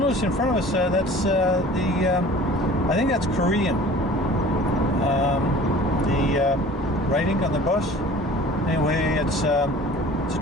in front of us, that's I think that's Korean. The writing on the bus. Anyway, it's a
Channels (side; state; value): both; normal; correlation 0.45